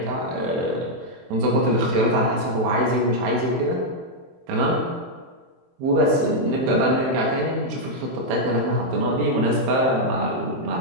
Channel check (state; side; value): late; left; 23 ms